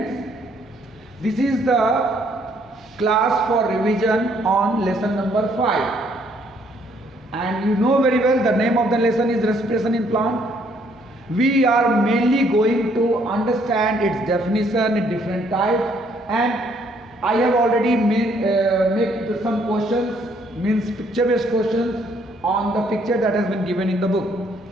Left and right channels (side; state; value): both; normal; correlation 0.67